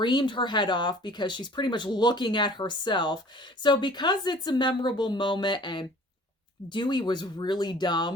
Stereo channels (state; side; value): normal; both; correlation 0.49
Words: her head off because she's pretty much looking at herself. So because it's a memorable moment and Dewey was really